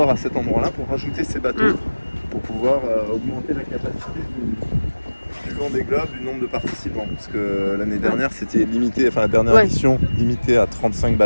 à cet endroit-là pour rajouter ces bateaux, pour pouvoir augmenter la capacité du Vendée Globe, du nombre de participants. Parce que l'année dernière, c'était limité, enfin la dernière édition, limitée à 35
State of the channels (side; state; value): both; inverted; correlation -1.00